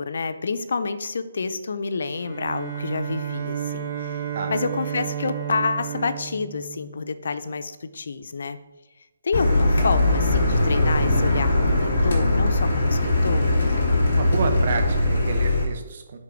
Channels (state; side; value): inverted; both; correlation -0.80